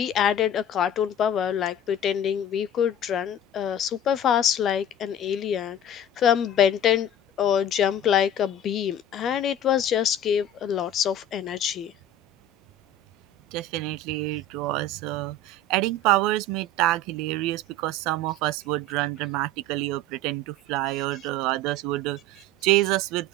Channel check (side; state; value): both; normal; correlation 0.37